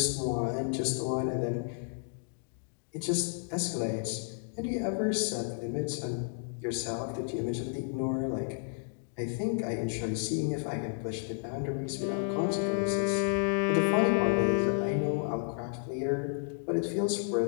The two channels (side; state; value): right; silent; digital silence